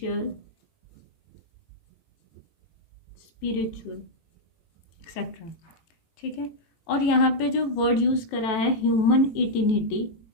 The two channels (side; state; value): right; late; 18 ms